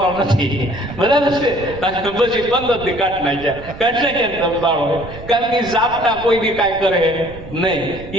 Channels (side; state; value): right; noise; rumble, 15 dB below the sound